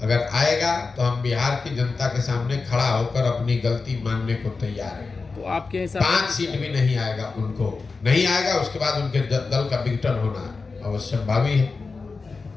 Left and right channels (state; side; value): quieter; right; 4.3 dB